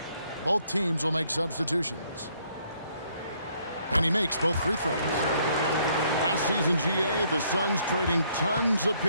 Both teams will make substitutions. And he makes both free throws. Last season, GA, the Suns trading tons of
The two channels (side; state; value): both; inverted; correlation -0.67